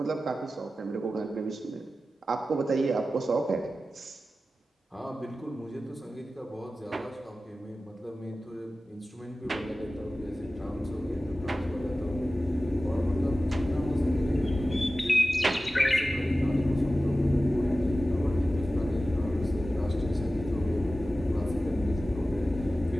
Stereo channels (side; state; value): both; normal; correlation 0.95